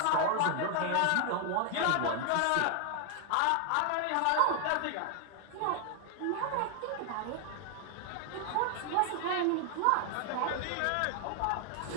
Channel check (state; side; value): different; both; correlation 0.00